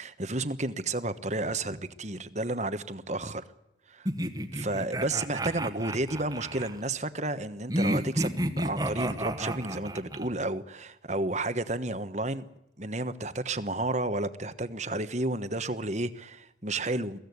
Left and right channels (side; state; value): both; normal; correlation 0.41